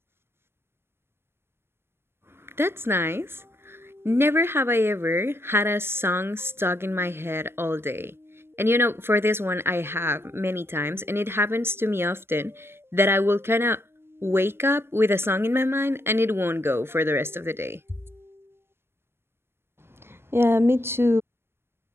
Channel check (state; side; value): late; left; 0.12 ms